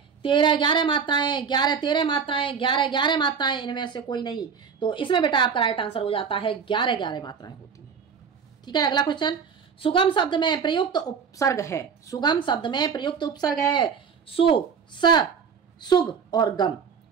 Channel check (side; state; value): left; quieter; 6.4 dB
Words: 13 11 मात्राएं, 11 13 मात्राएं, 11 11 मात्राएं, इनमें से कोई नहीं। तो इसमें बेटा आपका राइट आंसर हो जाता है 11 11 मात्राएं होती हैं। ठीक है, अगला क्वेश्चन, सुगम शब्द में प्रयुक्त उपसर्ग है। सुगम शब्द में प्रयुक्त उपसर्ग है सु, स, सुग और गम।